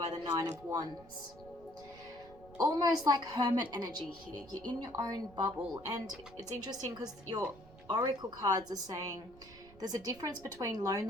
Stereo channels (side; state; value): right; noise; rumble, 21 dB below the sound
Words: the Nine of Wands. Almost like hermit energy here. You're in your own bubble, and it's interesting because your oracle cards are saying there's a difference between